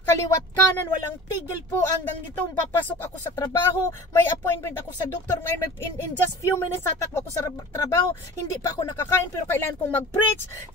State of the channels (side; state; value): both; normal; correlation 0.39